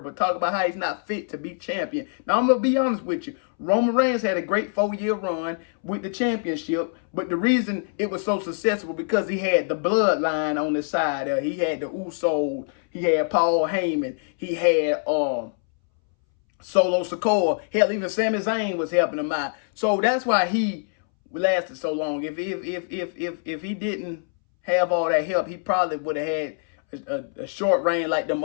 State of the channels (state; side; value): silent; right; 62 dB below the other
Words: talking about how he's not fit to be champion. Now, I'm going to be honest with you. Roman Reigns had a great 4-year run with the championship, but the reason it was so successful because he had the bloodline on his side. He had the Usos. He had Paul Heyman. He had Solo Sikoa. Hell, even Sami Zayn was helping him out. So that's why he lasted so long. If he didn't have all that help, he probably would have had a short reign like them